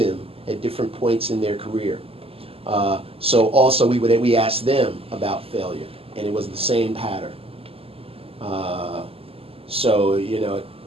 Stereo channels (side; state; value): left; late; 0.28 ms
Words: at different points in their career. So also we asked them about failure, and it was the same pattern. So, you know, it